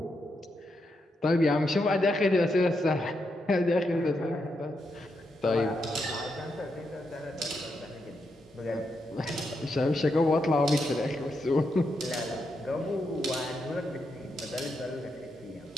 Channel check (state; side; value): normal; both; correlation 0.83